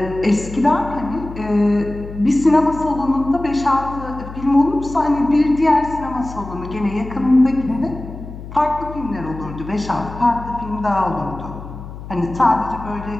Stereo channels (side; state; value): left; noise; hum, 12 dB below the sound